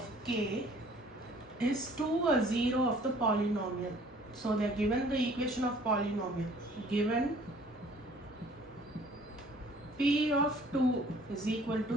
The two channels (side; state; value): both; normal; correlation 0.54